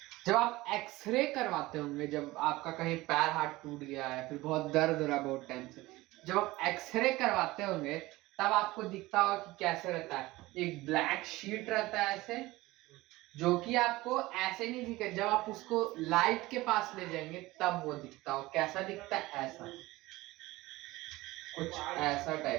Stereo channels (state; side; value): quieter; left; 19.3 dB